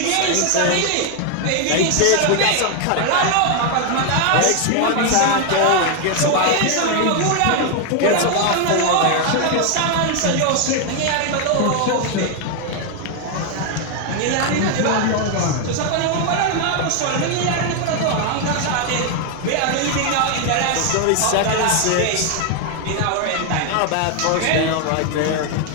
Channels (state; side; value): different; both; correlation 0.01